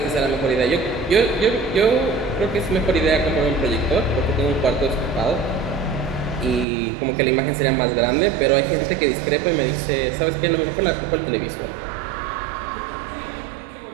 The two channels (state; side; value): drops out; left; at 6.7 s